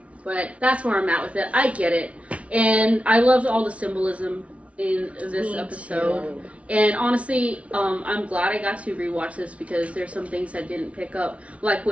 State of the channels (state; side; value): late; left; 0.064 ms